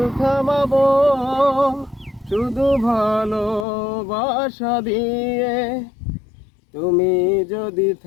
থামাবো শুধু ভালোবাসা দিয়ে। তুমি যদি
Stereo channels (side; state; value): right; drops out; at 3.7 s